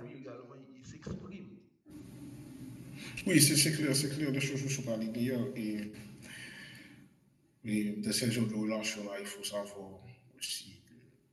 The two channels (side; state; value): both; identical; correlation 1.00